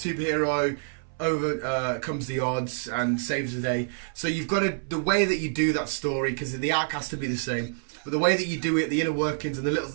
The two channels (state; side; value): silent; left; 60 dB below the other